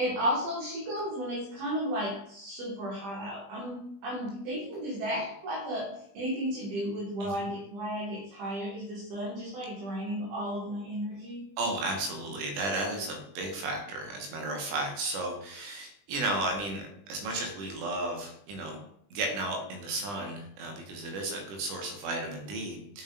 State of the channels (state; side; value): late; left; 20 ms